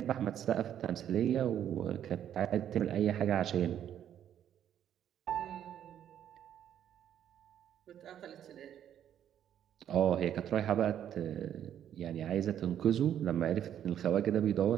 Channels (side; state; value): left; quieter; 10.1 dB